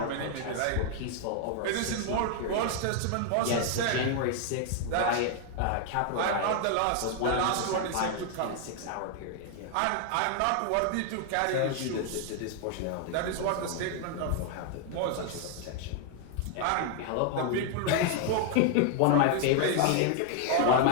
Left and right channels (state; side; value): different; both; correlation 0.00